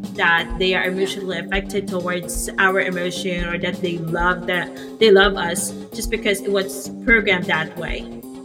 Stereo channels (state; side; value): identical; both; correlation 1.00